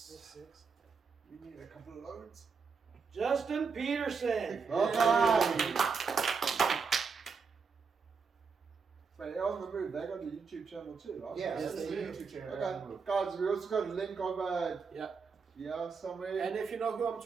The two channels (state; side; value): quieter; left; 5.3 dB